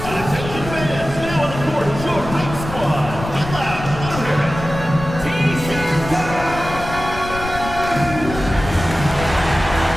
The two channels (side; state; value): left; noise; rumble, 9 dB below the sound